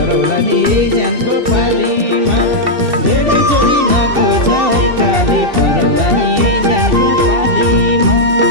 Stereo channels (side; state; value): left; late; 2.7 ms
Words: नि एजेन्टको पालीमा धेरै जोरी नखोज एकाले पराउला नि एजेन्टको पालीमा